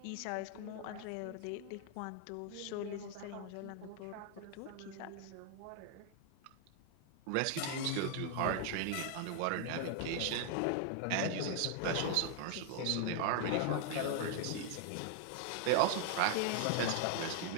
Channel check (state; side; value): different; both; correlation 0.00